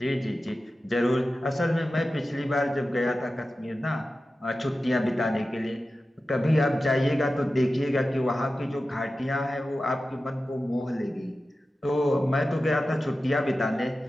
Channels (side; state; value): both; normal; correlation 0.94